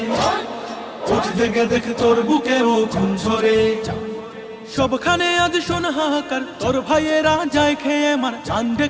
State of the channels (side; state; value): both; identical; correlation 1.00